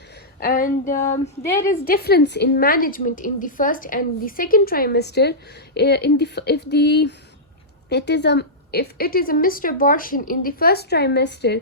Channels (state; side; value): normal; both; correlation -0.12